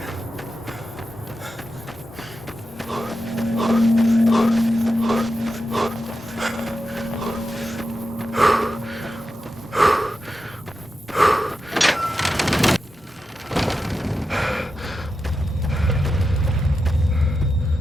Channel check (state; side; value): normal; both; correlation 0.89